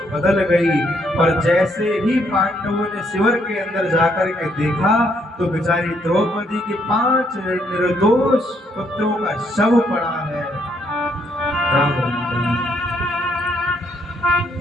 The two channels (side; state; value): both; normal; correlation 0.72